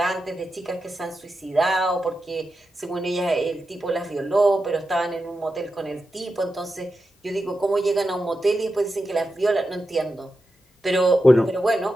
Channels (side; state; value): both; normal; correlation 0.90